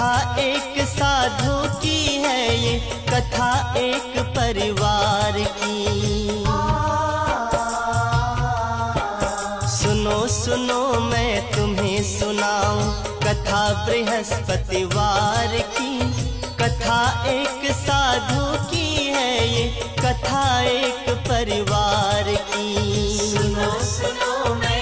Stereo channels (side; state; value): both; identical; correlation 1.00